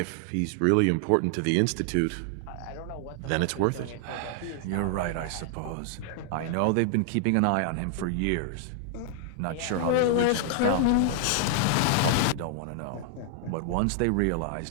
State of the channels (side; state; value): both; different; correlation 0.00